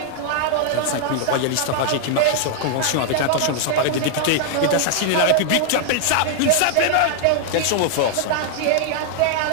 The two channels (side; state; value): both; different; correlation -0.01